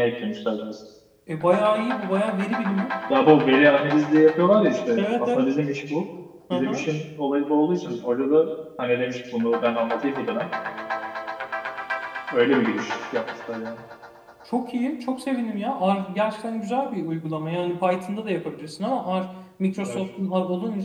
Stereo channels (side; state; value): both; identical; correlation 1.00